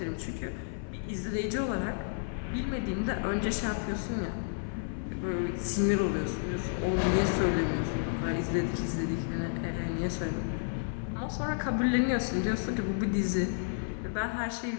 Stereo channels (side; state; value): right; silent; 57 dB below the other